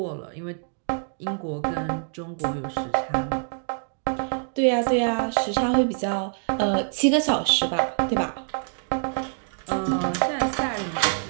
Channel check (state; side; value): silent; left; 61 dB below the other